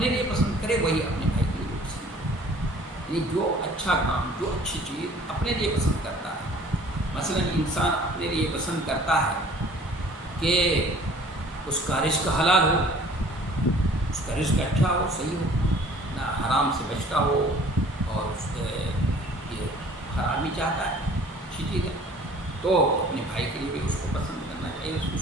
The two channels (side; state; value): both; normal; correlation 0.51